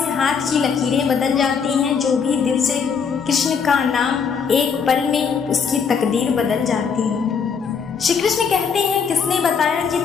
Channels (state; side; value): quieter; right; 6.2 dB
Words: हाथ की लकीरें बदल जाती हैं। जो भी दिल से कृष्ण का नाम एक पल में उसकी तकदीर बदल जाती है। श्री कृष्ण कहते हैं किसने बताया कि